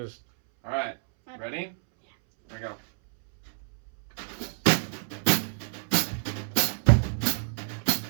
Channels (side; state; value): left; silent; 59 dB below the other